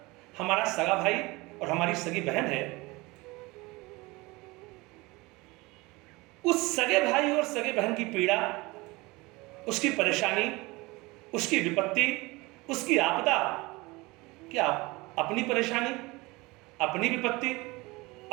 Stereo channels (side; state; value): left; quieter; 23.1 dB